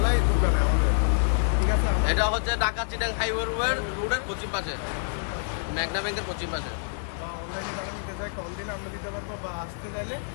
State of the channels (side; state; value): right; silent; digital silence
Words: দোকানে আমাদের। ঠিক আছে, এটা হচ্ছে ঢাকা চিটাং হাইওয়ে রোডের পশ্চিম পাশে, ম্যাগনা ব্যাংকের পশ্চিম পাশে। বা অনলাইনে যারা নিতে চায় কল দিলে আমরা দিতে পারবো, বা আসতে চাইলে